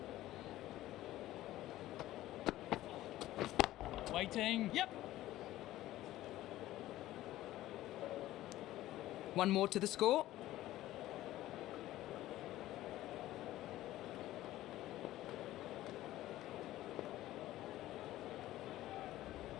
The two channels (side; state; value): right; quieter; 15.2 dB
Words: Waiting. Yep. One more to the score.